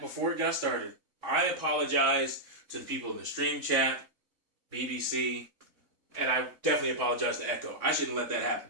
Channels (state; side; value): late; left; 3.5 ms